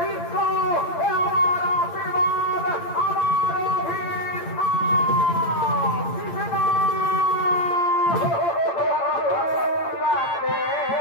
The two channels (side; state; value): right; late; 8.7 ms